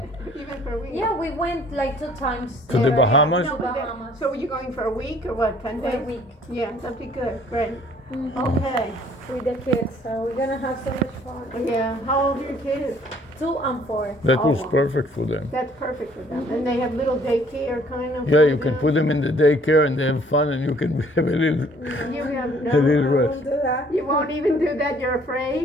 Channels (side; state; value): both; normal; correlation 0.58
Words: Even for a week. yeah, we went like 2 times. To the Bahamas? No, To but Bahamas. so are you going for a week or what? 10 For days? a week Yeah, that'd be good. Great. Mhm. Okay. with the kids. So we're gonna have so much fun. Yeah. How old are your kids? 2 and 4. That was Oh. perfect for them. That's perfect for them. And they have little daycare kind of. Yeah, you can put them in the daycare and they have fun and you can have a little, You have a little no. rest. Do that. You won't even do that. You're